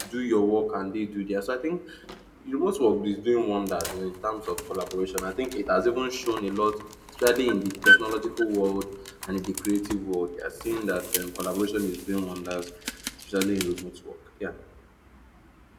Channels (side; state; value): both; identical; correlation 1.00